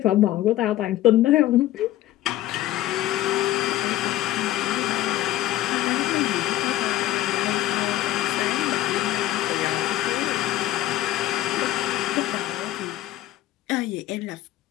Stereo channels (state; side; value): quieter; right; 14.5 dB